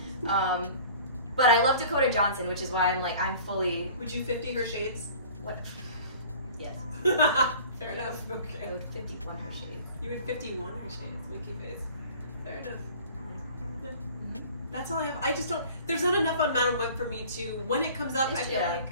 But I love Dakota Johnson, which is why I'm fully. Would you 50 her shades? What? Yes. Fair enough. Okay. I would 51 her shades. You would 51 her shades. Winky face. Fair enough. Mm-hmm. That's all I have. I just don't. There's not enough on Madame Web for me to. When it comes up, I feel like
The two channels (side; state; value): both; inverted; correlation -0.45